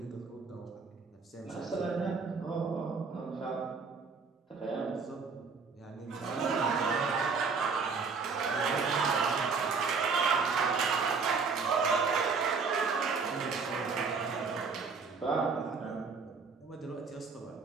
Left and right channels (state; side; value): quieter; left; 5.0 dB